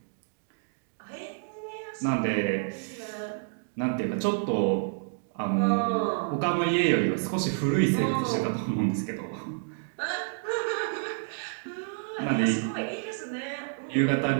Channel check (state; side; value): silent; left; digital silence